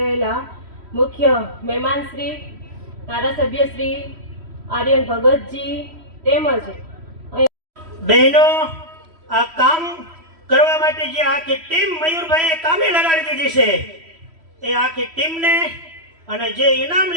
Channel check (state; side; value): late; left; 3.1 ms